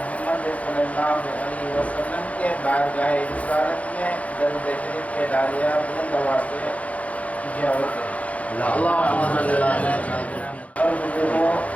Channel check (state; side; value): late; right; 0.067 ms